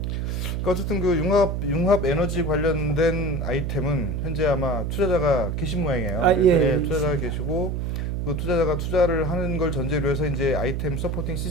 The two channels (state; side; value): noise; right; hum, 1 dB below the sound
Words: 어쨌든 그 융합 에너지 관련된 아이템은 현재 아마 투자자가 계신 모양이에요. 아, 예, 투자자가 계시고 그 투자자가 투자를 하는 걸 전제로 해서 이제 아이템 서포팅